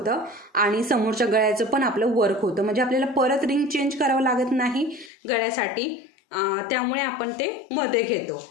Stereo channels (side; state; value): right; drops out; at 5.1 s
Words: आणि समोरच्या गळ्याचं पण आपलं वर्क होतं. म्हणजे आपल्याला परत रिंग चेंज करावं लागत नाही गळ्यासाठी, त्यामुळे आपण ते मध्ये घेतो.